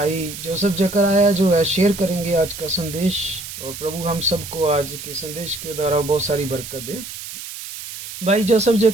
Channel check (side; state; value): right; noise; hiss, 11 dB below the sound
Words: जोसेफ जकराया जो है शेयर करेंगे आज का संदेश, और प्रभु हम सबको आज के संदेश के द्वारा बहुत सारी बरकत दे। भाई Joseph